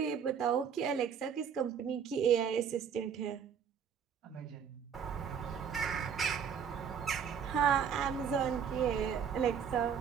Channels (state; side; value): quieter; left; 7.4 dB